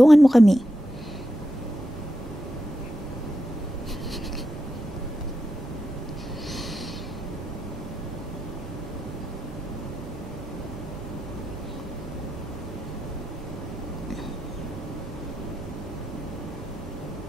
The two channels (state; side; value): normal; both; correlation 0.87